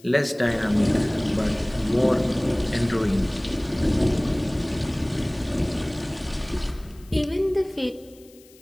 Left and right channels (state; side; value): noise; left; hiss, 26 dB below the sound